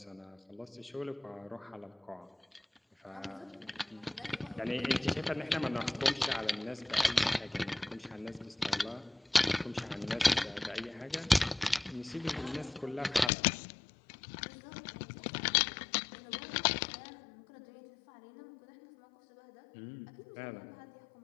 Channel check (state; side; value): drops out; right; at 13.3 s